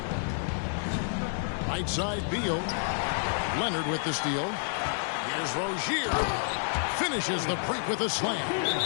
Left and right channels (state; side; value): silent; right; digital silence